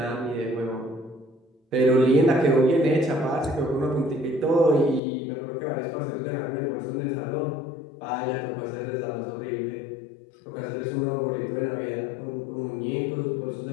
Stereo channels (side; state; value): right; drops out; at 5.0 s